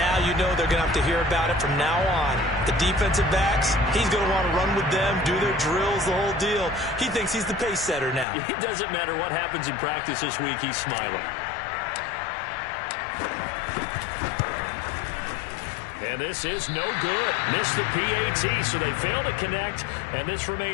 you know they're going to have to hear about it from now on. The defensive backs, he's going to want to run with them, do their drills, the whole deal. He thinks he's the pace setter now. It doesn't matter what happens in practice this week. He's smiling. And this is no good. Missed the PAT, so they fail to connect, and this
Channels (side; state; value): right; drops out; at 8.2 s